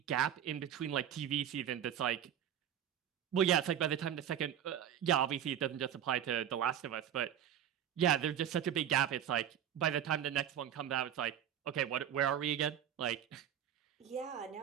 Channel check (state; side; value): quieter; left; 9.8 dB